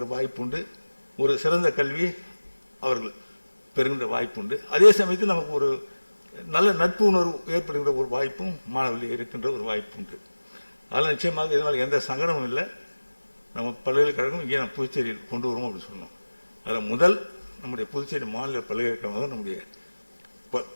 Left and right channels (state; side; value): inverted; both; correlation -1.00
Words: வாய்ப்புண்டு, ஒரு சிறந்த கல்வி அவர்கள் பெறுகின்ற வாய்ப்புண்டு. அதே சமயத்தில் நமக்கு ஒரு நல்ல நட்பு உணர்வு ஏற்படுகின்ற ஒரு வாய்ப்பும் மாணவர்கள் இருக்கின்ற ஒரு வாய்ப்புண்டு. அதனால் நிச்சயமாக இதனால் எந்த சங்கடமும் இல்லை. நம்ம பல்கலைக்கழகம் இங்கே நம்ம புதுச்சேரியில் கொண்டு வருவோம் அப்படின்னு சொன்னோம். அதில் முதல் நம்முடைய புதுச்சேரி மாநில பல்கலைக்கழகமாக நம்முடைய